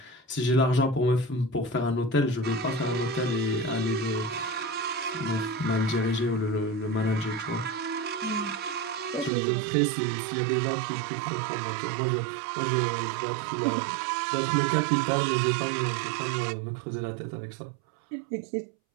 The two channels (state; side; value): drops out; left; at 9.3 s